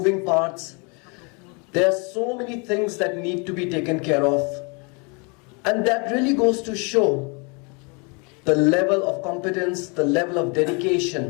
parts. There are so many things that need to be taken care of. And that really goes to show the level of competence, the level of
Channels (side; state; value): right; quieter; 32.4 dB